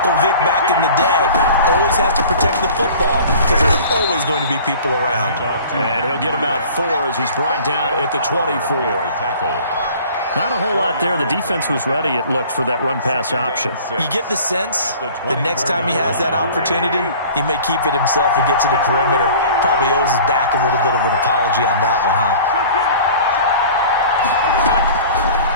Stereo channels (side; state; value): both; inverted; correlation -0.45